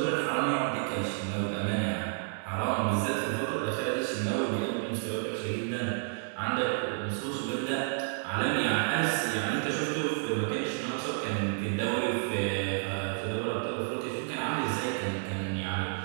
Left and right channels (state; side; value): silent; left; digital silence